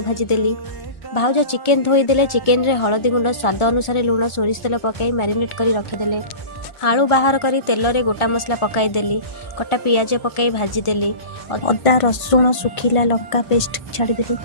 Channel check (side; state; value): right; late; 1.4 ms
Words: भाजी देली। भाउज चिकेन धोई देले। चिकेन रे हळदी गुंड स्वाद अनुसार लुण सोरिष तेल पकाई मैरिनेट करी रखिदेले। आलू बाहर करी तेल रे गोटा मसला पकाई देली। कटा पियाज पकाई भाजी देली। अदा रसुण सुखिला लंका पेस्ट छाड़ी देली।